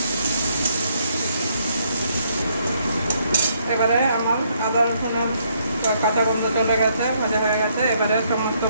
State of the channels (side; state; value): both; inverted; correlation -0.71